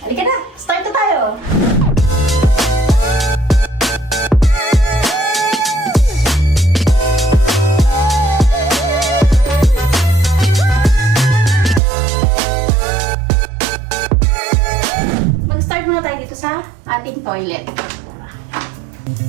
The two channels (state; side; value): drops out; left; at 11.8 s